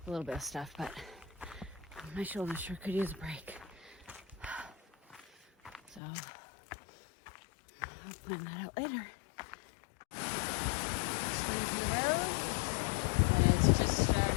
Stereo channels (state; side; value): drops out; right; at 6.0 s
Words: a little bit of stuff, but my shoulder sure could use a break. So I'll plan that out later. Leave the road, and it's just starting